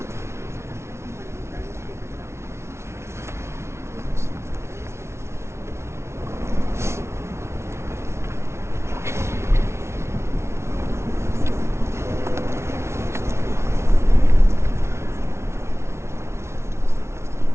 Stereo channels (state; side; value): late; left; 0.13 ms